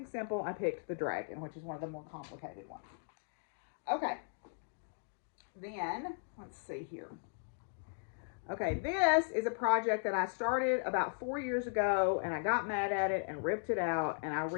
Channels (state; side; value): silent; right; digital silence